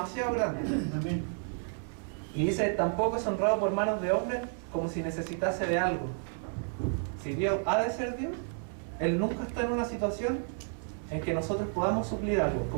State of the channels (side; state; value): left; silent; 57 dB below the other